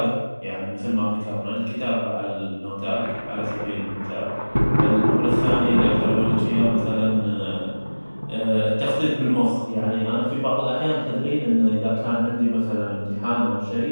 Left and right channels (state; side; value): inverted; both; correlation -1.00